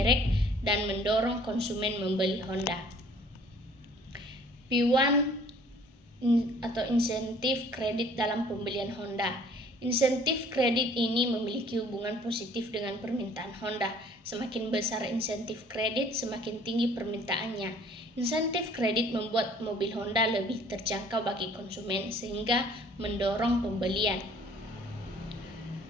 dan mendorong konsumen membeli Honda. P1 atau insentif kredit dalam pembelian Honda. Insentif kredit ini memiliki hubungan positif dengan permintaan Honda. Semakin besar insentif kredit, semakin tinggi permintaannya. Insentif kredit membuat mobil Honda lebih terjangkau bagi konsumen sehingga mendorong pembelian.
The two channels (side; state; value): both; normal; correlation 0.55